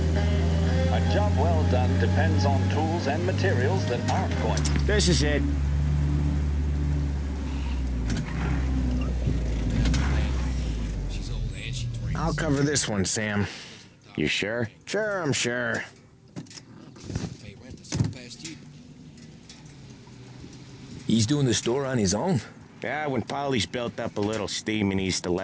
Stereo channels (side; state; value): both; identical; correlation 1.00